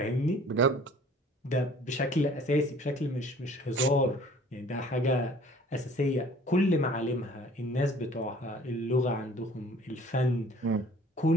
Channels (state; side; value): normal; both; correlation 0.52